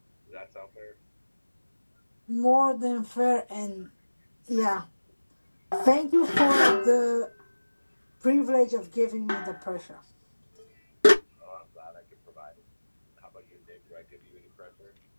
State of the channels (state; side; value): inverted; both; correlation -1.00